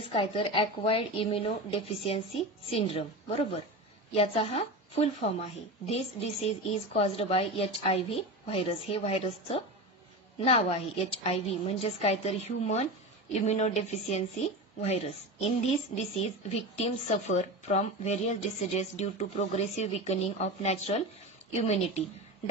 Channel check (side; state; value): both; normal; correlation 0.25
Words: काय तर ॲक्वायर्ड इम्युनो डेफिशियन्सी सिंड्रोम, बरोबर. याचा हा फुल फॉर्म आहे. This disease is caused by HIV virus. हे व्हायरसचं नाव आहे HIV म्हणजेच काय तर human immunodeficiency virus. In this disease victims suffer from various diseases due to progressive weakening of natural immunity.